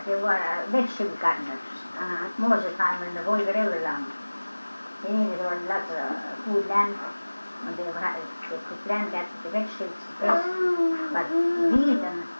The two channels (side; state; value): both; inverted; correlation -1.00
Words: they were vegetable gardeners. Most of the time when the Volga River along. They needed lots of food land, and they could plant that, the vegetables the best. But wheat and